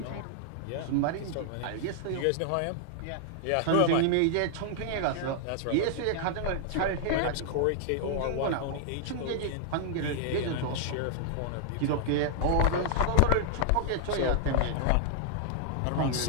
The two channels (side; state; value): both; different; correlation -0.01